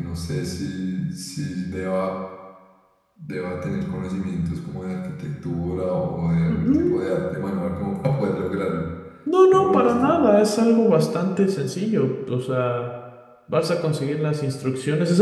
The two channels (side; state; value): both; identical; correlation 1.00